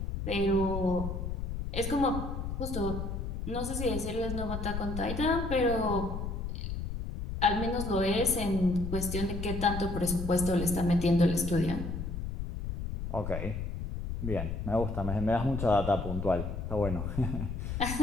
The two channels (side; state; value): left; noise; rumble, 4 dB below the sound